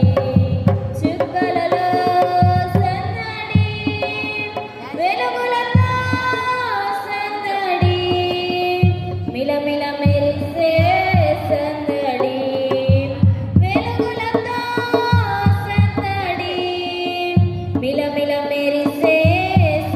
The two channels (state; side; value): identical; both; correlation 1.00